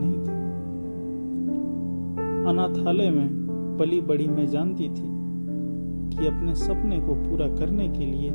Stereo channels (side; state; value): both; inverted; correlation -1.00